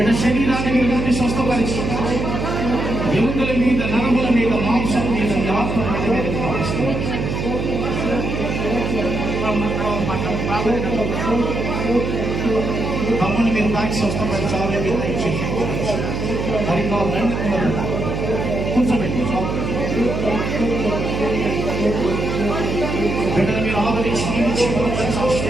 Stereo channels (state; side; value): noise; right; hum, 3 dB below the sound